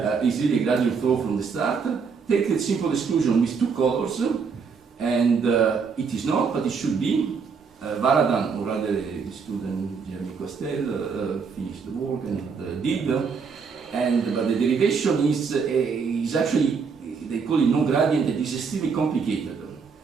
is really a gradient flow from the start. Take the simple exclusion with two colors, and it is not, but it should be. Varadan, or rather the student Jeremy Costel, finished the work and did, but the derivation is actually, they call it non-gradient, it is extremely complicated.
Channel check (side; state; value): left; quieter; 5.6 dB